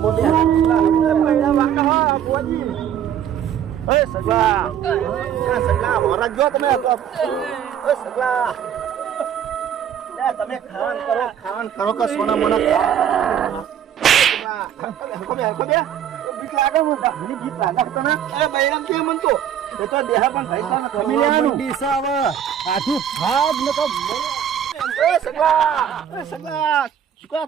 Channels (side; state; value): left; quieter; 9.4 dB